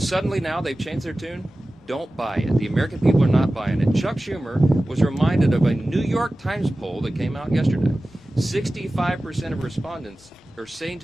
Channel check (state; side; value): normal; both; correlation 0.96